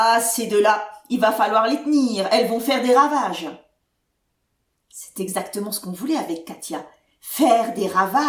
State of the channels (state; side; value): identical; both; correlation 1.00